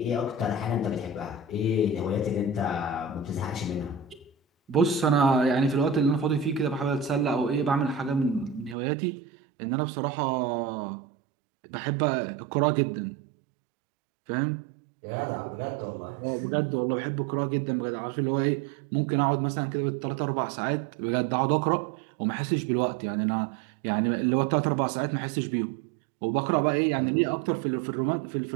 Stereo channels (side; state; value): left; drops out; at 8.8 s